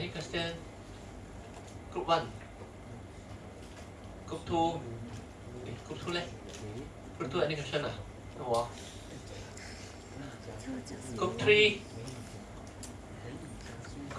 question? Group 1. Group 2. Group 2 leh? Group 2 any question? No. Group 3.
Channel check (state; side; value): identical; both; correlation 1.00